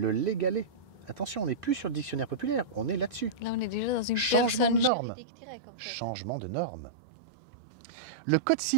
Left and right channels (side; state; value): left; drops out; at 4.9 s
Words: légalé. Attention, on n'est plus sur le dictionnaire populaire, on est là-dessus. Là, on est déjà dans une Changement de personne norme. juridique directe, en fait. Changement de normes. Le Code